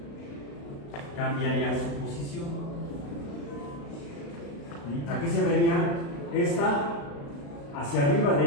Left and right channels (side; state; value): right; late; 35 ms